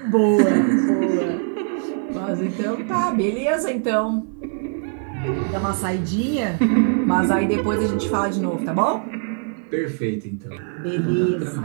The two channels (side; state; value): left; silent; 56 dB below the other